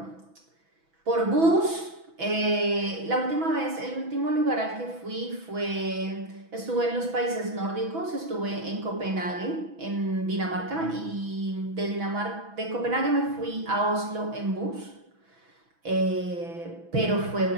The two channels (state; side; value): late; left; 6.1 ms